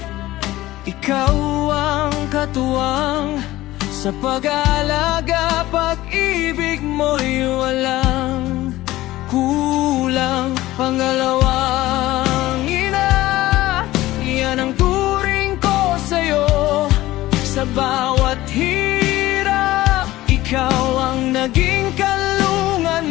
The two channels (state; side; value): quieter; right; 16.8 dB